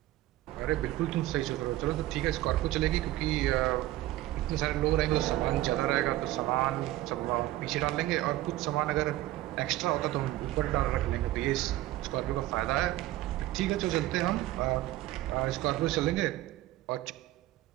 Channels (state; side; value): quieter; left; 16.1 dB